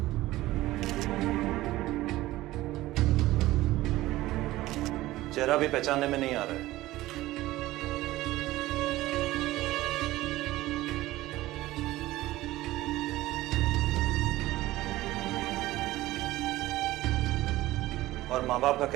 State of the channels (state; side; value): quieter; left; 16.9 dB